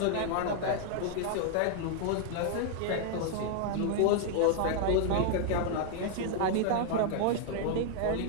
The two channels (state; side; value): different; both; correlation 0.00